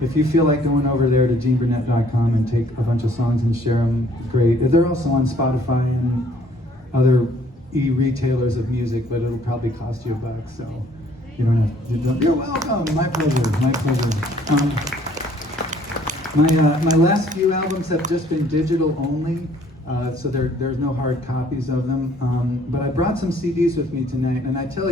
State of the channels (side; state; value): both; normal; correlation 0.60